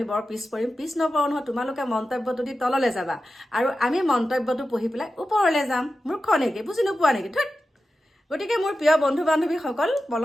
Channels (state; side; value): normal; both; correlation 0.92